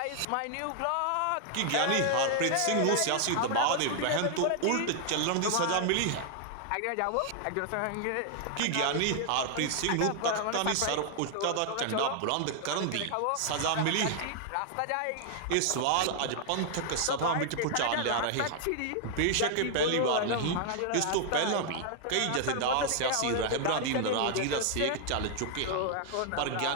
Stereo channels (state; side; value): different; both; correlation 0.00